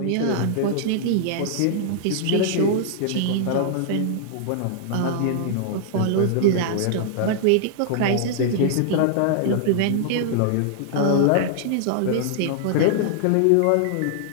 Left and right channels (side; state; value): both; different; correlation -0.01